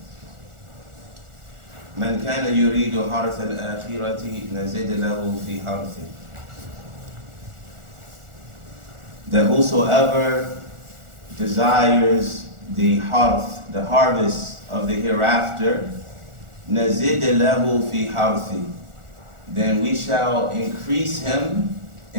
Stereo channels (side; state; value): left; late; 1.4 ms